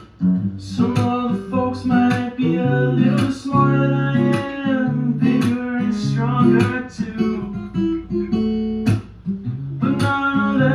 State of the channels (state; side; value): identical; both; correlation 1.00